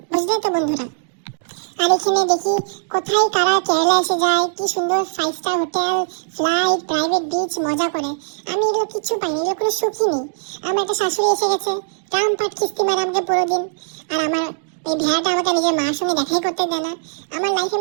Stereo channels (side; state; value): left; silent; digital silence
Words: বুঝলে তো বন্ধুরা। আর এখানে দেখি কোথায় কারা কেরালা এসে যায়, কি সুন্দর 5 star hotel, flight, private beach মজা করে। আমি এগুলো কিছু পাইনি, এগুলো কোনো সুখই নেই। আমার একটা শাশুড়ি এসে গেছে, রামপাট কিস্তি মারে আমাকে পুরো দিন। আর আমার এই ভেড়াটা আমাকে নিজের মার সঙ্গে দেখাই করতে দেয় না। আমার লাইফে